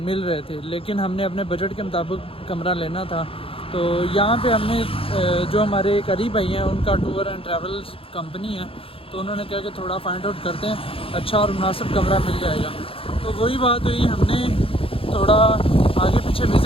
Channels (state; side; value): late; right; 0.27 ms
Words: रहे थे, लेकिन हमने अपने बजट के मुताबिक कमरा लेना था। तो यहाँ पे हमने जो हमारे करीब भाई हैं उनका टूर एंड ट्रैवल्स कंपनी है, तो उन्होंने कहा कि थोड़ा फाइंड आउट करते हैं, अच्छा और मुनासिब कमरा मिल जाएगा। तो वही बात हुई, हमने थोड़ा आगे पीछे